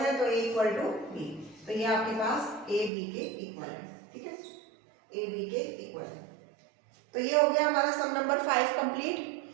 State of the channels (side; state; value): left; drops out; at 2.9 s